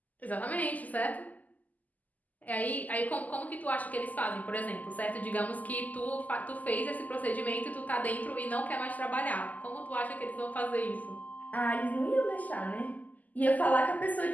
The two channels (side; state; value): right; late; 0.079 ms